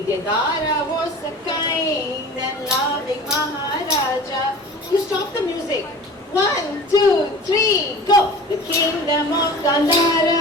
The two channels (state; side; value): normal; both; correlation 0.39